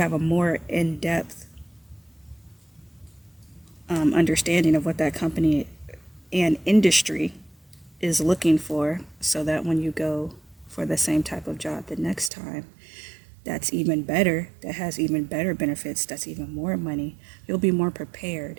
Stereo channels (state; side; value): drops out; left; at 12.3 s